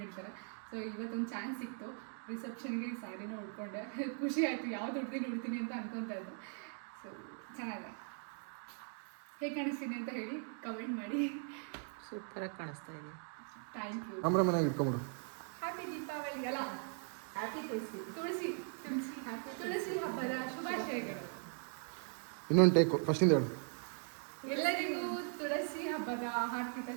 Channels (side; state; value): left; silent; 51 dB below the other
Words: ಸೊ ಇವತ್ತೊಂದು ಚಾನ್ಸ್ ಸಿಕ್ತು, ರಿಸೆಪ್ಷನ್ಗೆ ಈ ಸ್ಯಾರಿನ ಉಡ್ಕೊಂಡೆ. ಖುಷಿ ಆಯಿತು, ಯಾವ್ದು ಉಡ್ತೀನಿ ಅಂತ ಅನ್ಕೊತಾ ಇದ್ದೆ. ಸೊ ಚೆನ್ನಾಗಿದೆ. ಹೇಗೆ ಕಾಣಿಸ್ತೀನಿ ಅಂತ ಹೇಳಿ ಕಮೆಂಟ್ ಮಾಡಿ. ಸೂಪರಾಗಿ ಕಾಣಿಸ್ತಾ ಇದೆ. Thank you. ಹ್ಯಾಪಿ ದೀಪಾವಳಿ ಅಲ್ಲ, ಹ್ಯಾಪಿ ತುಳಸಿ ಹಬ್ಬದ ಶುಭಾಶಯಗಳು. ಇನ್ನೊಂದು ಟೇಕ್ ಫಸ್ಟಿಂದ ಹೇಳು. ಎಲ್ಲರಿಗೂ ತುಳಸಿ ಹಬ್ಬದ ಹಾರ್ದಿಕ